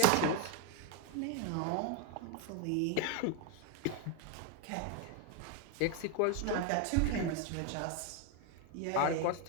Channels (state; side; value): different; both; correlation 0.01